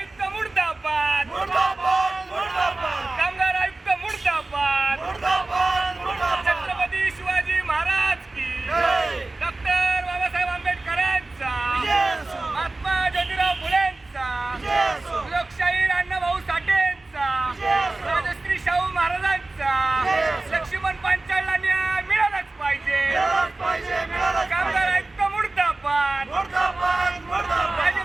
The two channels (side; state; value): left; quieter; 3.1 dB